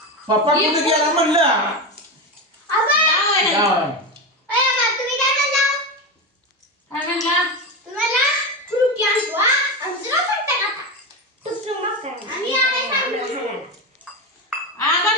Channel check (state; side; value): normal; both; correlation 0.17